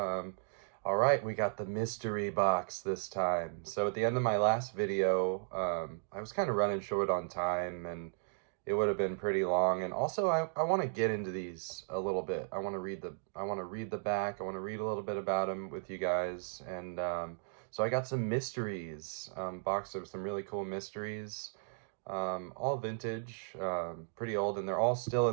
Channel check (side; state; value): left; silent; digital silence